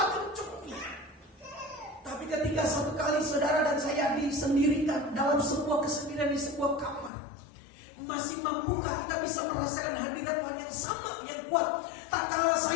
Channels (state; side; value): drops out; right; at 7.1 s